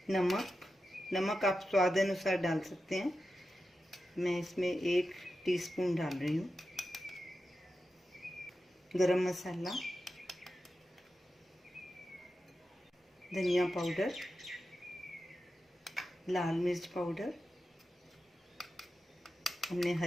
नमक आप स्वाद अनुसार डाल सकते हैं। मैं इसमें 1 टीस्पून डाल रही हूँ। गरम मसाला, धनिया पाउडर, लाल मिर्च पाउडर, हमने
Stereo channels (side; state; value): both; normal; correlation 0.91